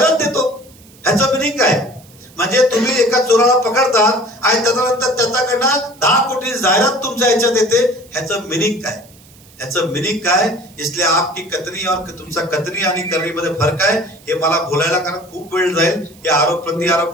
देतो. ह्याचं मिनिंग काय? म्हणजे तुम्ही एका चोराला पकडतात आणि त्याच्यानंतर त्याच्याकडनं 10 कोटी जाहिरात तुमच्या ह्याच्यात येते. ह्याचं मिनिंग काय? इसलिए आपकी कथनी और तुमचा कथनी आणि करणीमध्ये फरक आहे. हे मला बोलायला कारण खूप वेळ जाईल. हे आरोप प्रति आरोप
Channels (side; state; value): right; noise; hiss, 26 dB below the sound